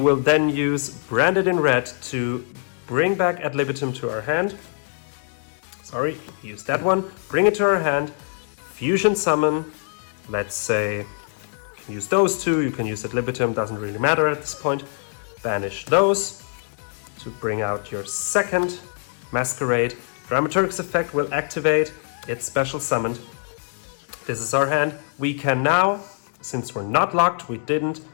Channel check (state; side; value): silent; right; 60 dB below the other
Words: then use Branded in red to bring back Ad libitum to our hand. Use that one, bring it to our hand, Fusion Summon, let's say, use those two, you can use Ad libitum, doesn't really matter at this point. Banish those to bring out your second Masquerade. Dramaturg's effect will activate, it's special summoned. This is our hand. We can now, since we're not locked, we didn't